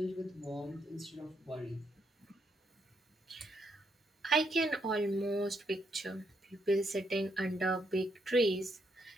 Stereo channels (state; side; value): normal; both; correlation 0.76